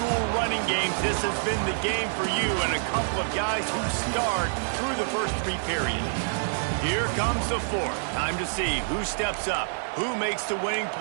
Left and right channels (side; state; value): left; silent; digital silence